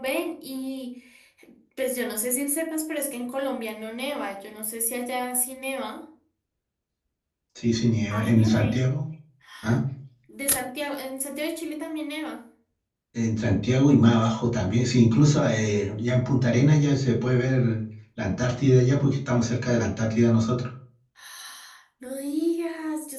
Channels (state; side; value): identical; both; correlation 1.00